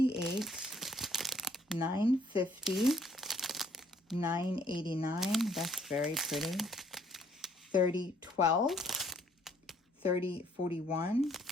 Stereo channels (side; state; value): both; normal; correlation 0.63